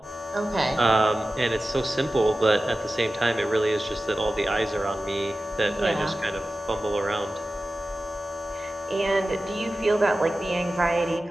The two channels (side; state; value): both; normal; correlation 0.94